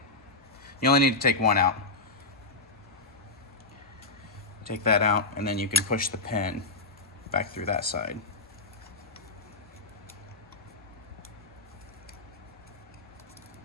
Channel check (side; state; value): right; quieter; 3.2 dB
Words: You only need to take one out. Take that out, and then you can push the pin back through that side.